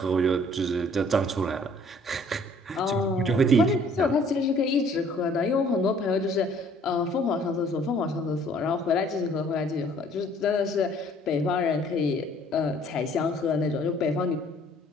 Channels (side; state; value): both; normal; correlation 0.57